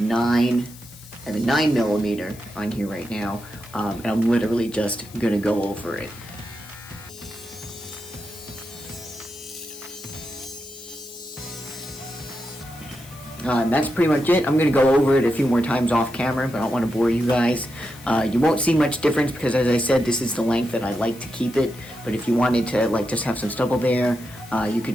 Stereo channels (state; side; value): noise; left; hiss, 20 dB below the sound